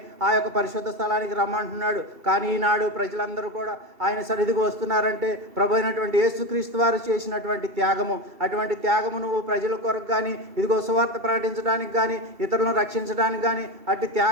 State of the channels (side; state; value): left; late; 2.7 ms